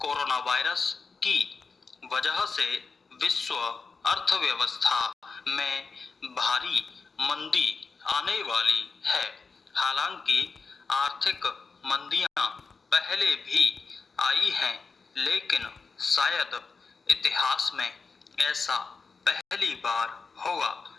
वायरस की वजह से विश्व अर्थव्यवस्था में भारी मंदी आने वाली है। हालांकि आर्थिक मंदियां पहले भी आई हैं, लेकिन शायद इतिहास में ऐसा पहली बार होगा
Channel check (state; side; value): quieter; right; 4.7 dB